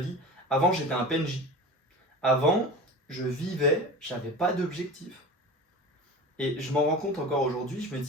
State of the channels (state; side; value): normal; both; correlation 0.33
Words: Avant, j'étais un PNJ. Avant, je vivais, j'avais pas d'objectif. Et je m'en rends compte encore aujourd'hui, je me